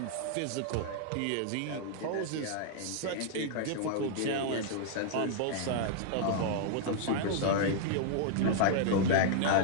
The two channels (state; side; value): different; both; correlation -0.01